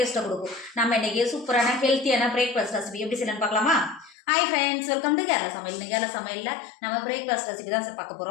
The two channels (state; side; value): drops out; right; at 4.2 s